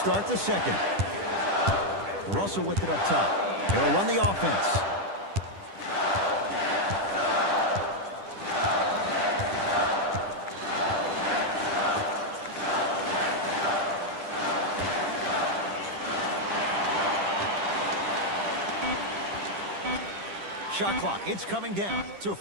the second. Russell with it up top. He'll run the offense. Shot clock, it's coming down to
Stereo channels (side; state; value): left; late; 10 ms